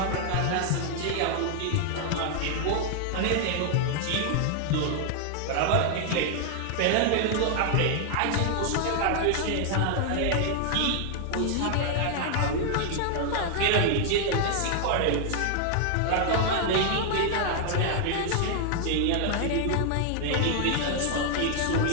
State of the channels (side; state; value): both; different; correlation 0.00